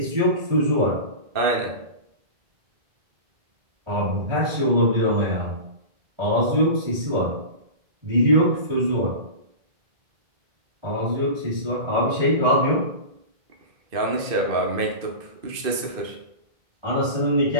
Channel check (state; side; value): late; left; 2.5 ms